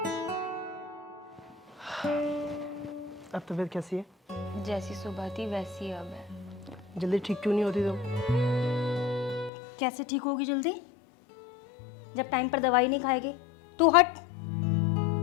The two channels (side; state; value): right; drops out; at 9.5 s